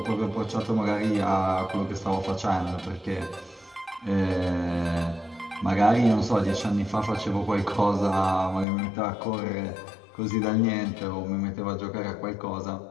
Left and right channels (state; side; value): drops out; right; at 8.7 s